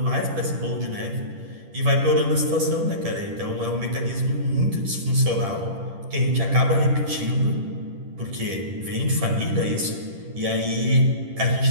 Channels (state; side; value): late; left; 10 ms